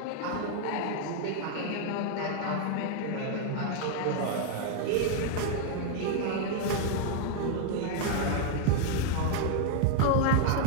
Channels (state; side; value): different; both; correlation 0.00